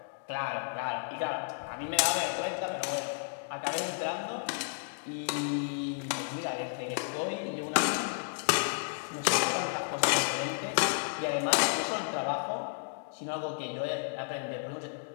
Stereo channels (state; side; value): silent; right; digital silence